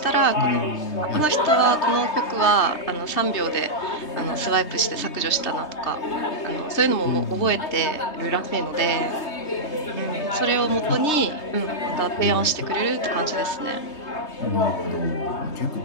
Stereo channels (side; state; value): right; late; 3.2 ms